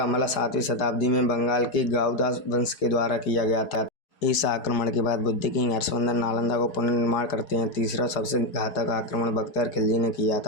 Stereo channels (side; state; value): right; late; 4.8 ms